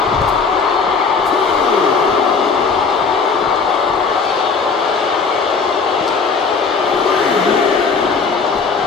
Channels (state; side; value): quieter; right; 5.0 dB